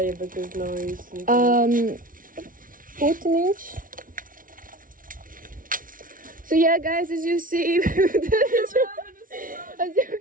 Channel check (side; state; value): left; late; 0.39 ms